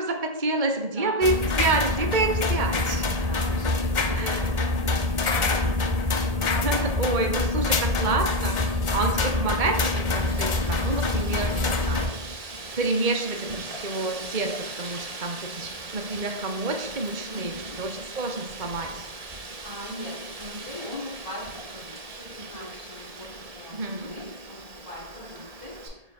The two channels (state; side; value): late; left; 1.7 ms